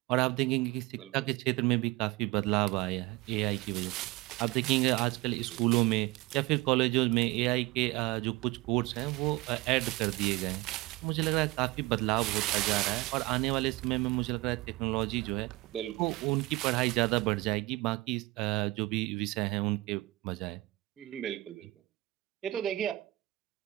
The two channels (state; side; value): quieter; left; 20.7 dB